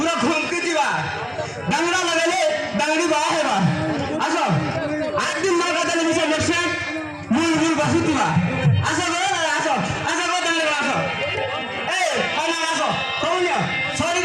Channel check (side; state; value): both; identical; correlation 1.00